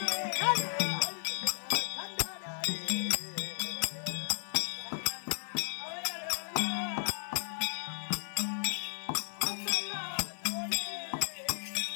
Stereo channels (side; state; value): right; silent; digital silence